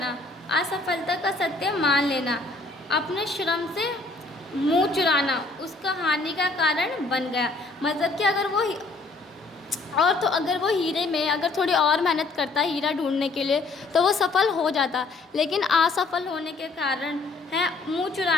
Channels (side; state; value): right; quieter; 3.5 dB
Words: असफलता का सत्य मान लेना, अपने श्रम से मुंह चुराना उसका हानि का कारण बन गया। मतलब कि अगर वो हीरे में अगर थोड़ी और मेहनत करता हीरा ढूंढने के लिए तो वो सफल हो जाता, लेकिन असफल होने के कारण है मुंह